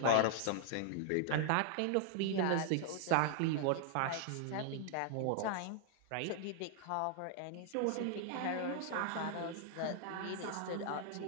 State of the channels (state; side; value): different; both; correlation 0.00